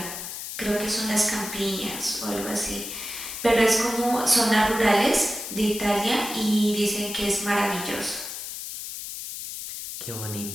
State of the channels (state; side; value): noise; left; hiss, 8 dB below the sound